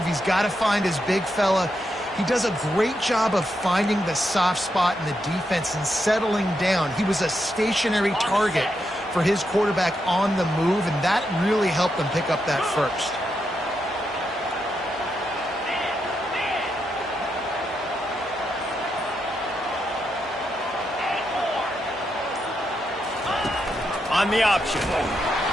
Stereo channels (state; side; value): normal; both; correlation 0.83